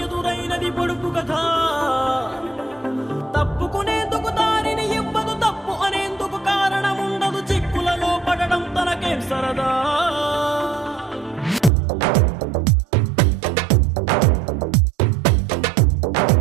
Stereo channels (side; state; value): left; drops out; at 11.7 s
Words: ఎదురైనది పొడుపు కథ? తప్పుకునేందుకు దారిని ఇవ్వదు, తప్పు అనేందుకు కారణం ఉండదు. చిక్కులలో పడడం తనకేం సరదా?